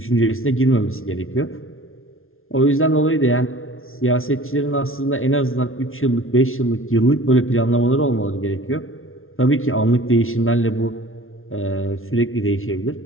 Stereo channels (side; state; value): right; late; 0.61 ms